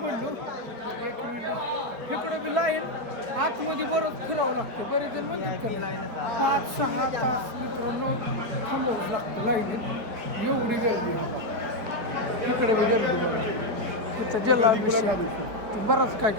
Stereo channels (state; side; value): late; left; 5.1 ms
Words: एक मिनिट इकडं बी लाईन आतमध्ये बरंच फिरावं लागतं. बरेच जण म्हणतात का 5-6 तास मित्रांनो थांबावंच लागतं लाईनीत. एवढी गर्दी इकडे बी गर्दी बघा. तिथं जलाभिषेक बराच काय